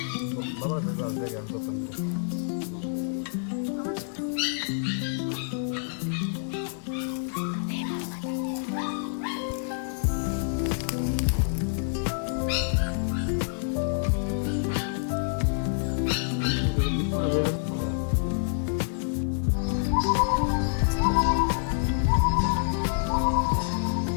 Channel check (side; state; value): right; silent; 60 dB below the other